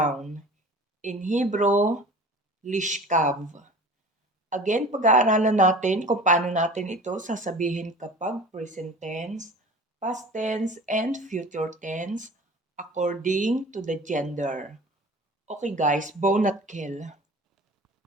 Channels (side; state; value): both; normal; correlation 0.40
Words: In Hebrew, Lishkav. Again, pag-aaralan natin kung paano natin ito sasabihin kapag present tense, past tense, and future tense according to the gender. Okay guys, bone at kill.